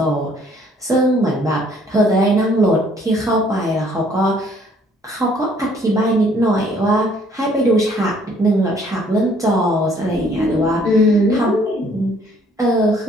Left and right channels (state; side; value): normal; both; correlation 0.61